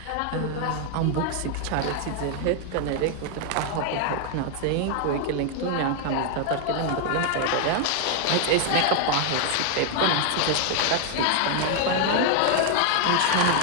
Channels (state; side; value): different; both; correlation 0.00